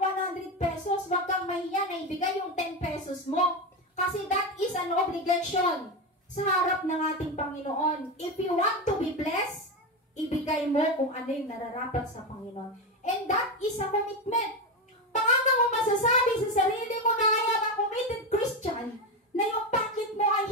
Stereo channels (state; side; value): normal; both; correlation 0.14